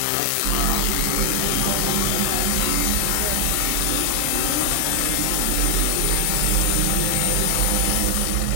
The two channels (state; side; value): different; both; correlation 0.00